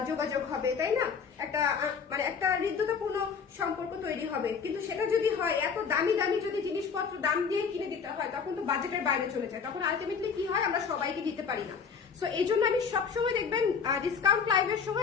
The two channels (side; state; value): right; quieter; 6.1 dB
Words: যোগাযোগ হবে, তাই না? একটা মানে একটা হৃদ্যতাপূর্ণ সম্পর্ক তৈরি হবে। কিন্তু সেটা যদি হয় এত দামি দামি যদি জিনিসপত্র দাম দিয়ে কিনে দিতে হয়, তখন তো বাজেটের বাইরে চলে যায়, তখন আলটিমেটলি কি হয়, আমরা সবাইকে দিতে পারি না। সো এই জন্য আমি সবসময় দেখবেন ডিসকাউন্ট লাইভের